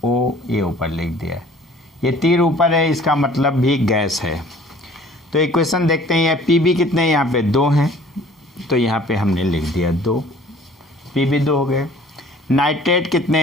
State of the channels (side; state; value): both; normal; correlation 0.52